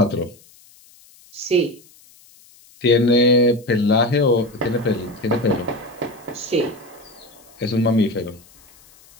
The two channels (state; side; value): noise; left; hiss, 27 dB below the sound